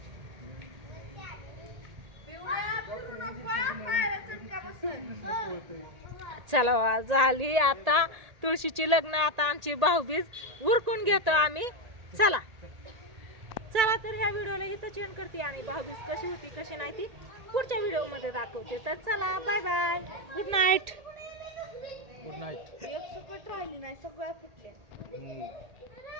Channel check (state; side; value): late; left; 1.8 ms